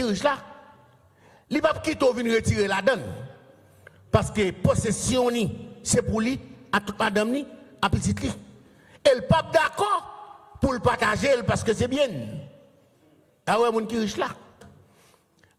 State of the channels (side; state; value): both; identical; correlation 1.00